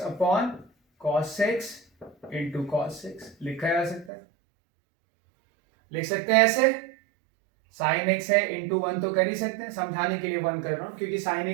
upon cos x into cos x, लिखा जा सकता है, लिख सकते हैं ऐसे, sin x है इंटू वन तो कर ही सकते हैं, समझाने के लिए वन कर रहा हूं क्योंकि sin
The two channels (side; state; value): left; drops out; at 4.1 s